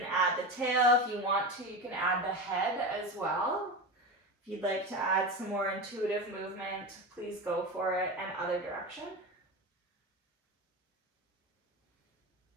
add the tail if you want to. You can add the head as well. If you'd like to add some more intuitive movement, please go for it, and other direction.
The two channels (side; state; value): both; normal; correlation 0.24